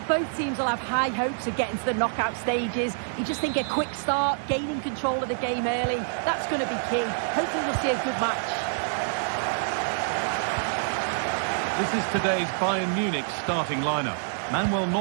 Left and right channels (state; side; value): silent; left; 56 dB below the other